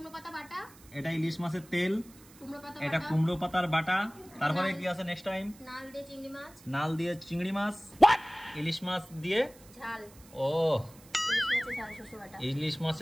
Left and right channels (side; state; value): right; noise; hiss, 23 dB below the sound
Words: পাতা বাটা, এটা ইলিশ মাছের তেল, এটা কুমড়ো পাতার বাটা। তারপরে কি আছে নেক্সট টাইম? নাল দিয়ে চিংড়ি মাছ, নাল দিয়ে চিংড়ি মাছ, ইলিশ মাছ দিয়ে ঝাল। ও ইলিশ মাছের ইলিশ